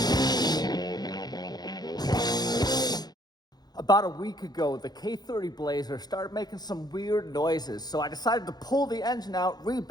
About a week ago, the K30 Blazer started making some weird noises, so I decided to pull the engine out,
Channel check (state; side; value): late; right; 0.19 ms